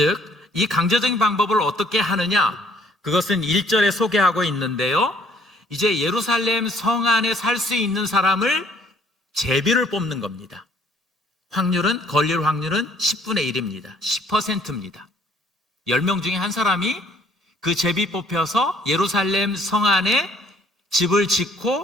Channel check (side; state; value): both; normal; correlation 0.60